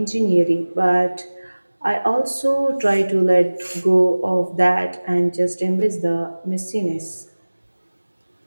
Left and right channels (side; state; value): both; inverted; correlation -1.00